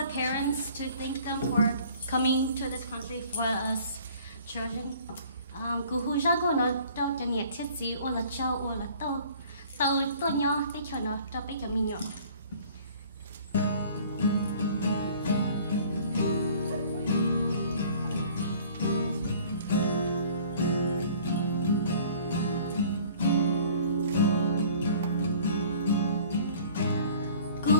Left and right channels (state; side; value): inverted; both; correlation -0.51